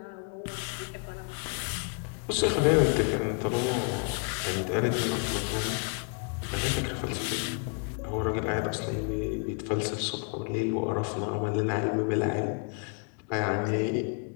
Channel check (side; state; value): right; quieter; 38.6 dB